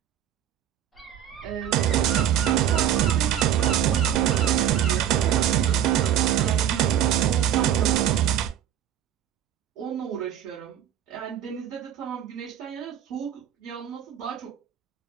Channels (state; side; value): quieter; left; 10.4 dB